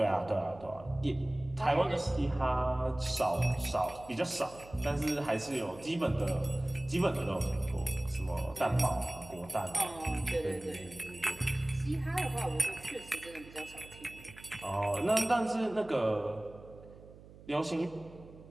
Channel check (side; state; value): right; noise; hum, 19 dB below the sound